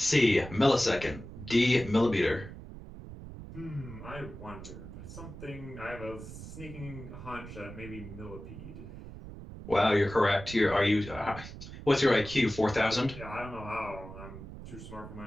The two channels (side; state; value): right; noise; rumble, 13 dB below the sound